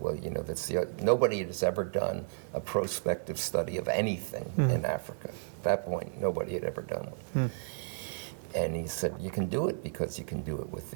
well, nobody has ever done a prospective study of anything in Africa. At that point, nobody had ever done one. And he said, you can do it because you can do it with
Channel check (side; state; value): left; silent; 56 dB below the other